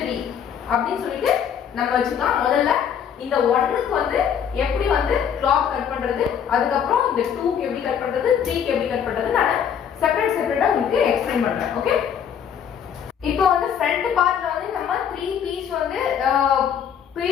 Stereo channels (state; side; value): quieter; right; 8.3 dB